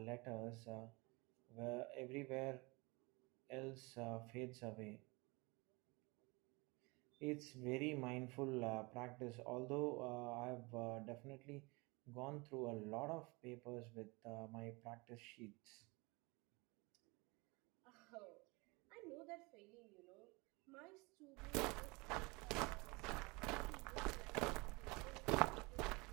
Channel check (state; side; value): quieter; left; 26.3 dB